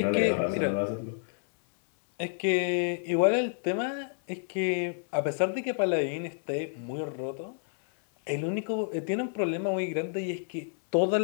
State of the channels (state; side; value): silent; right; 58 dB below the other